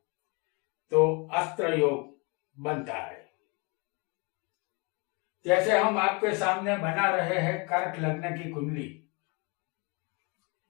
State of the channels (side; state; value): right; quieter; 30.8 dB